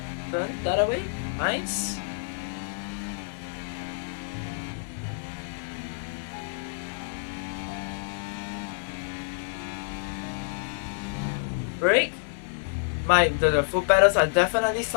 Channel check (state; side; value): silent; right; digital silence